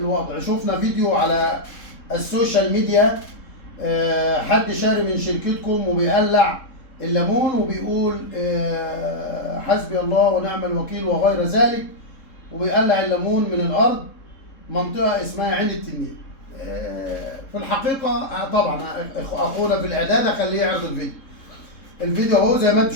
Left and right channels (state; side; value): late; right; 3.7 ms